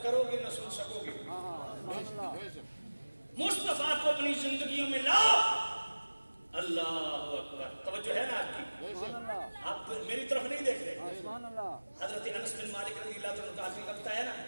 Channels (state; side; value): inverted; both; correlation -1.00